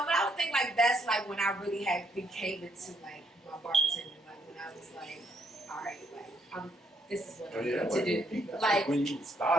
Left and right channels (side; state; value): both; normal; correlation 0.71